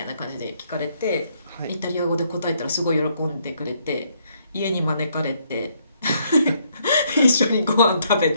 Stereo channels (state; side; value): inverted; both; correlation -0.71